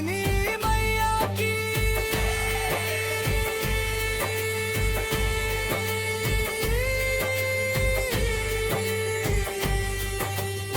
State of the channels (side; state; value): both; identical; correlation 1.00